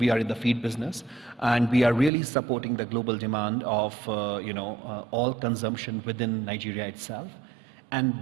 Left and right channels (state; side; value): drops out; left; at 2.1 s